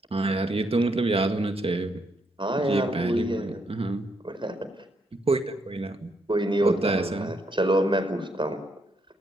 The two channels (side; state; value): both; normal; correlation 0.76